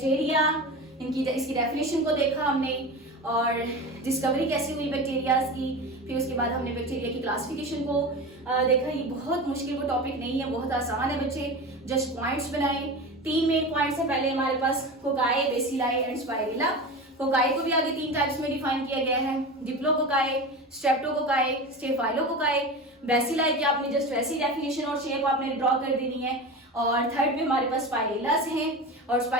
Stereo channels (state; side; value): normal; both; correlation 0.28